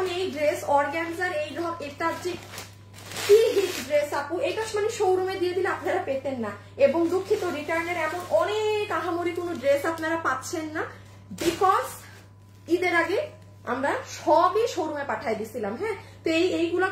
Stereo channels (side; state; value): both; identical; correlation 1.00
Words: এই ড্রেস অর্গানজার এই এটা যে কি হিট ড্রেস আপু, এটা মানে শোরুমে দিয়ে দিলে আপনারা পেতেন না। এবং দুঃখিত রিটার্নের এমন অনেক আহামরি কোনো ড্রেস আপনারা পাচ্ছেন না বিকজ ঈদের আগে আমরা সবই শোরুমে পাঠাই দিছিলাম। হ্যাঁ তো এইগুলা